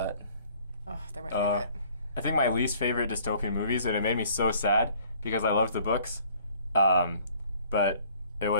Oh, they're my favorite. I think my least favorite dystopian movies, and it made me so sad because I loved the books, but it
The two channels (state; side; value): inverted; both; correlation -0.56